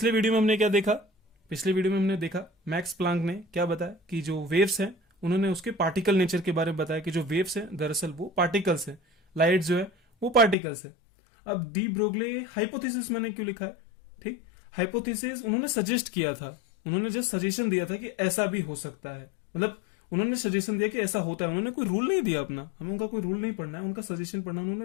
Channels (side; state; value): right; drops out; at 10.6 s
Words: वीडियो में हमने क्या देखा? पिछले वीडियो में हमने देखा मैक्स प्लांक ने क्या बताया कि जो वेव्स हैं उन्होंने उसके पार्टिकल नेचर के बारे में बताया कि जो वेव्स हैं दरअसल वो पार्टिकल्स हैं, लाइट जो है वो पार्टिकल्स है। अब दी ब्रोगले हाइपोथेसिस मैंने क्यों लिखा है? ठीक, हाइपोथेसिस उन्होंने सजेस्ट किया था, उन्होंने जस्ट सजेशन दिया था कि ऐसा भी हो सकता है, मतलब उन्होंने सजेशन दिया कि ऐसा होता है। उन्होंने कोई रूल नहीं दिया अपना, हमें उनका कोई रूल नहीं पढ़ना है, उनका सजेशन पढ़ना,